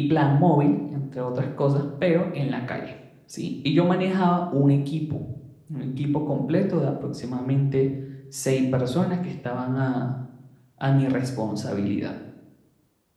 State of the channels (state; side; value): identical; both; correlation 1.00